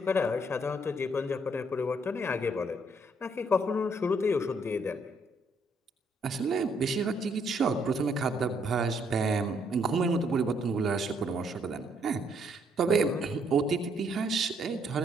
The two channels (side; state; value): both; normal; correlation 0.70